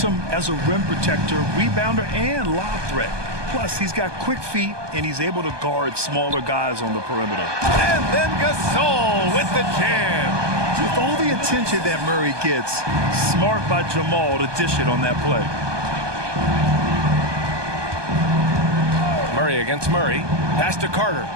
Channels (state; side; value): late; left; 1.2 ms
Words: him as a rim protector, rebounder, and lob threat. Plus, he's got quick feet, and he's able to guard smaller guys on the perimeter. And then Gasol with the jam. With all the attention that Murray gets, smart by Jamal to dish it on that play. Murray against Murray. Pass to Carter.